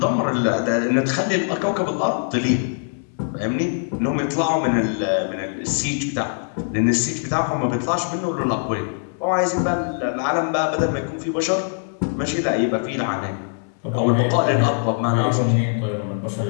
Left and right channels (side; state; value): right; silent; 64 dB below the other